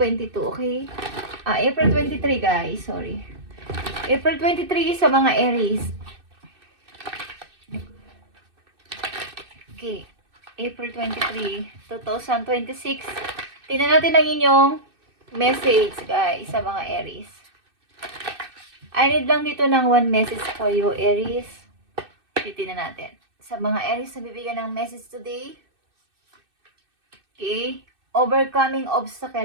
okay? April 23 guys, sorry. April 23 sa mga Aries. Okay, April 23, 2026. Tingnan natin ang inyong message guys sa mga Aries. I need lang dito ng one message for you, Aries. Titingnan natin. Sa mga Aries na bibigyan ng message today. Okay. Overcoming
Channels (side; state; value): left; late; 2.6 ms